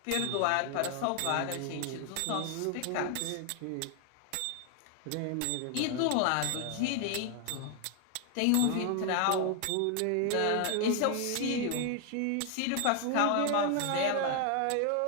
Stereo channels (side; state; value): both; different; correlation 0.00